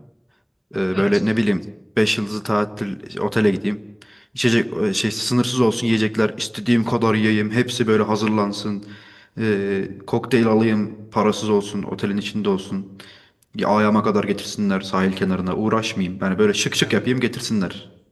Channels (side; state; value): both; identical; correlation 1.00